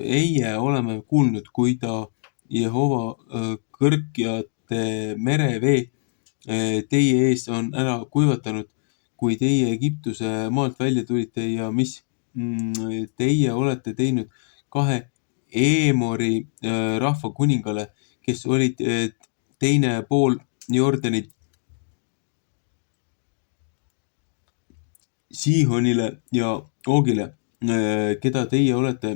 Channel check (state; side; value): silent; right; digital silence